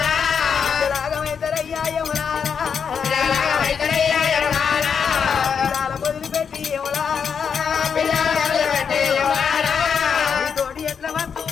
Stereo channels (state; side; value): quieter; right; 6.8 dB